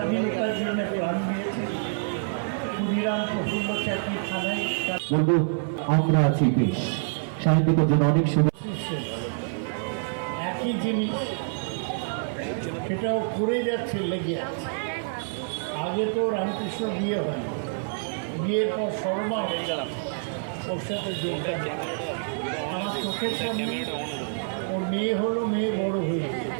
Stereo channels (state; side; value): silent; left; 60 dB below the other